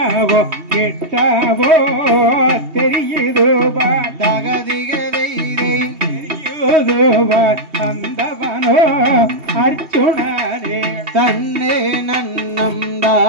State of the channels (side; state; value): left; late; 2.8 ms